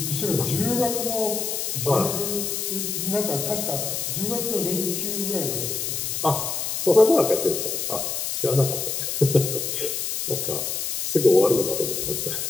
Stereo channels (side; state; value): left; noise; hiss, 2 dB below the sound